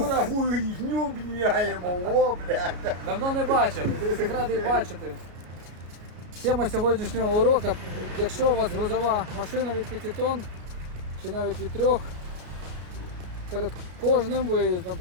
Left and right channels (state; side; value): late; left; 33 ms